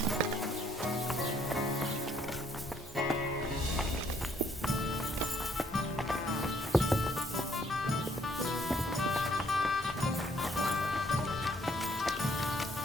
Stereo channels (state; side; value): normal; both; correlation 0.66